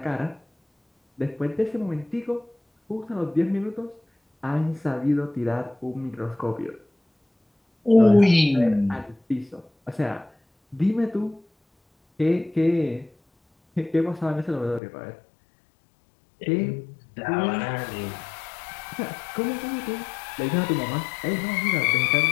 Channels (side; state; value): right; drops out; at 14.8 s